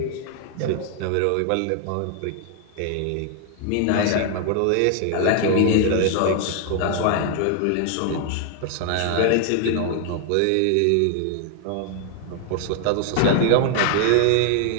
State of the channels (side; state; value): both; different; correlation 0.00